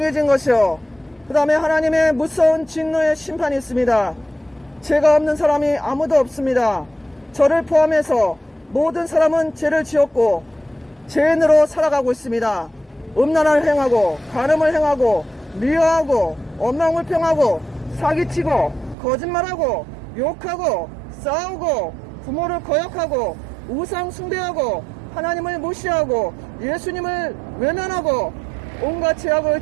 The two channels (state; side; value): drops out; left; at 18.9 s